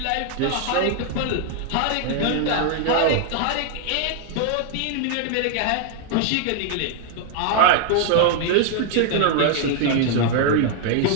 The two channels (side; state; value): both; different; correlation 0.00